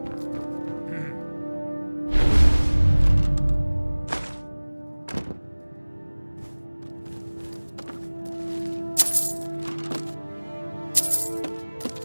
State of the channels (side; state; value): both; inverted; correlation -1.00